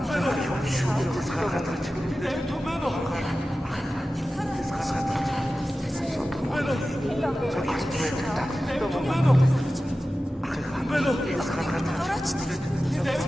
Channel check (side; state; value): both; normal; correlation 0.94